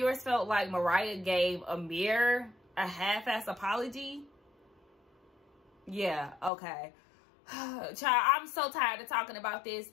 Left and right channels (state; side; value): drops out; right; at 6.5 s